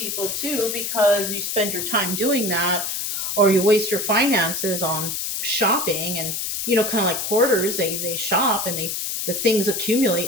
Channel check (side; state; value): left; noise; hiss, 3 dB below the sound